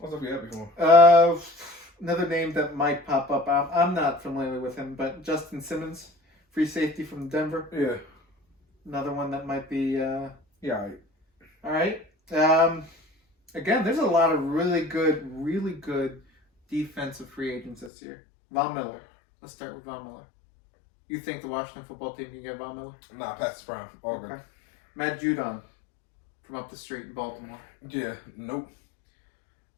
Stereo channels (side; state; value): right; drops out; at 17.9 s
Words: for him. Another name that might pop up. I'm not familiar with him, but Justin Simmons, free safety from Denver. Yeah. Another one that might be. Yeah. All right. Again, there's a lot of really good defensive free agents this year. Von Miller. Let's start with Von Miller. You think the Washington football team can get Von Miller? Nah, pass the prime. Okay. Matt Judon from up the street in Baltimore. Yeah. Nope.